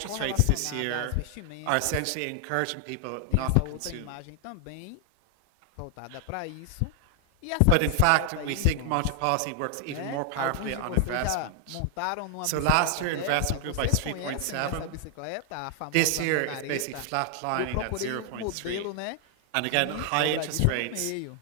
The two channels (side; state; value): both; different; correlation 0.00